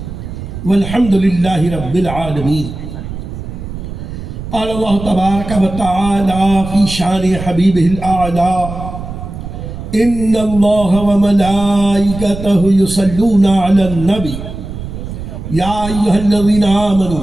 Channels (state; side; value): noise; right; rumble, 9 dB below the sound